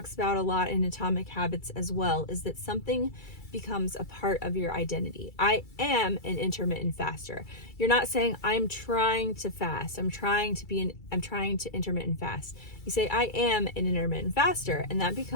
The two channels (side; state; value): right; late; 2.3 ms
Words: about a lot in Atomic Habits as well, is that something becomes a part of your identity. I am an intermittent faster. You're not saying I'm trying to fast. I'm trying to intermittent fast. You say I am an intermittent faster, and that